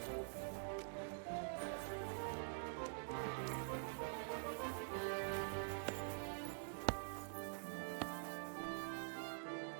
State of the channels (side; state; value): left; silent; digital silence